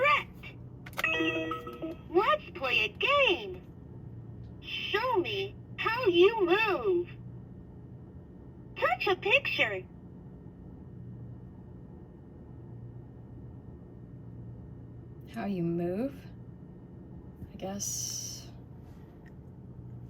Let's play a game. Show me how you move. Touch a picture. How you move? I guess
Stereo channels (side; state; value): both; identical; correlation 1.00